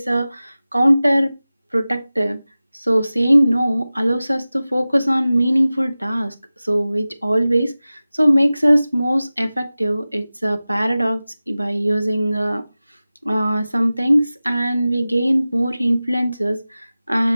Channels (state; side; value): inverted; both; correlation -0.97